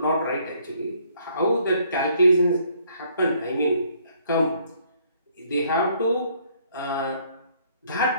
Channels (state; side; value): inverted; both; correlation -0.65